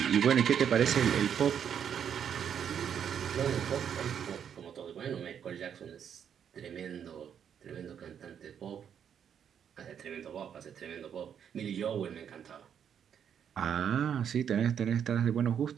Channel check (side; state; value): left; quieter; 8.4 dB